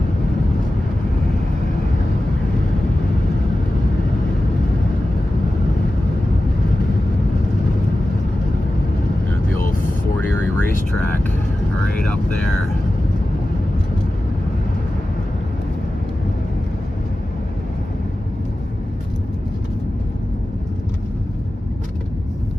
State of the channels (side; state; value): both; normal; correlation 0.94